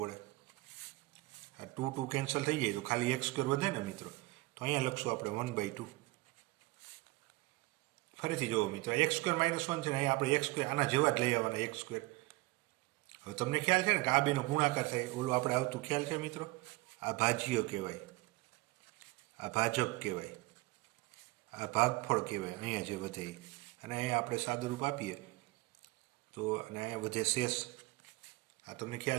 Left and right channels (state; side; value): quieter; left; 21.8 dB